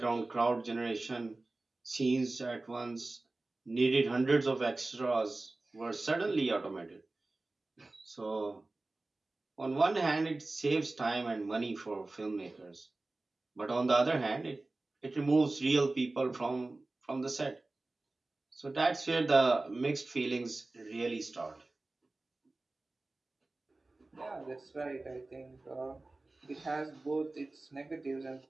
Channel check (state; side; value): quieter; left; 3.1 dB